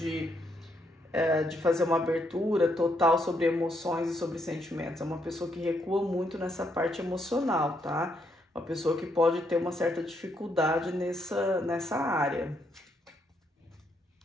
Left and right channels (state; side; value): normal; both; correlation 0.76